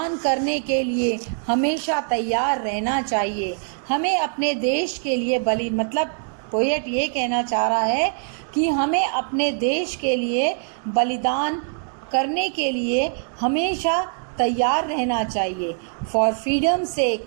करने के लिए हमेशा तैयार रहना चाहिए. हमें अपने देश के लिए मतलब पोएट ये कहना चाह रहा है कि हमें अपने देश के लिए बलिदान करने के लिए हमेशा तैयार रहना चाहिए। For freedom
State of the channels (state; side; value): silent; left; digital silence